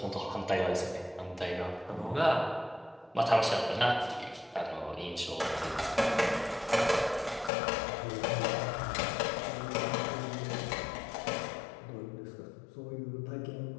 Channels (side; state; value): right; drops out; at 7.5 s